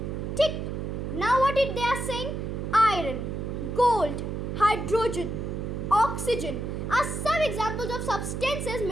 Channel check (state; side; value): noise; right; hum, 4 dB below the sound